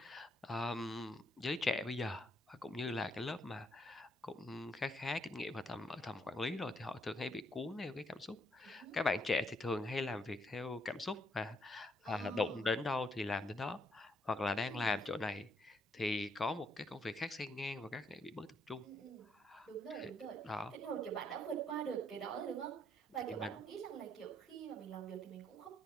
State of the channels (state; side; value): normal; both; correlation 0.73